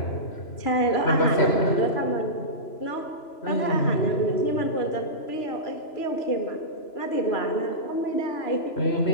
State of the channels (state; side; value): late; right; 3.0 ms